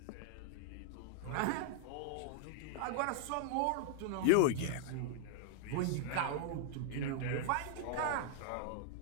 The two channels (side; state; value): both; different; correlation 0.00